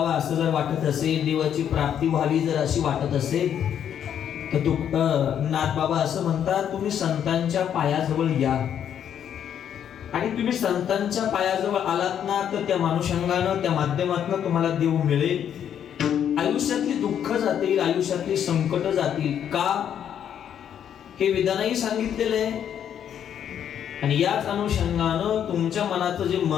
असं जर वाटत असेल देवाची प्राप्ती व्हावी जर अशी वाटत असेल तर नाथबाबा असं म्हणतात, तुम्ही संतांच्या पायाजवळ या, आणि तुम्ही संतांच्या पायाजवळ आलात ना तर त्या मानुषंगानं, त्या माध्यमातून तुम्हाला देव मिळेल. आयुष्यातली दुःख जातील, आयुष्यातली संकट जातील. का? हे वेदांनाही सांगितलेलं आहे. आणि याच अनुषंगानं तुमच्या मनाचं जे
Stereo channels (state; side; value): quieter; right; 9.2 dB